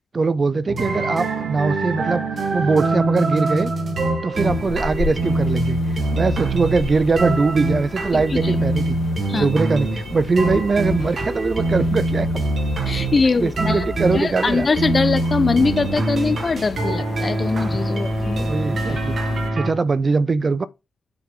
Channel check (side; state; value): both; normal; correlation 0.86